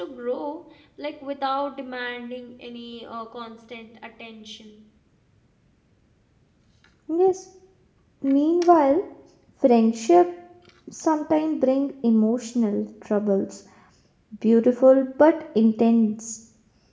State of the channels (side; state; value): both; identical; correlation 1.00